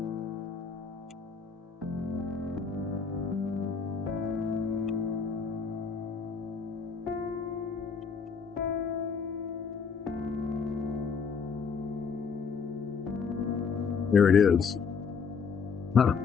there it is. Huh.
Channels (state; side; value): quieter; right; 5.7 dB